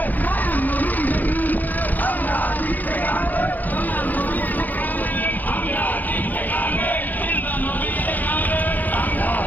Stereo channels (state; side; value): late; right; 0.083 ms